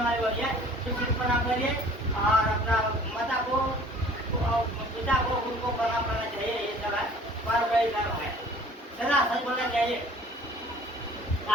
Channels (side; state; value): both; normal; correlation 0.51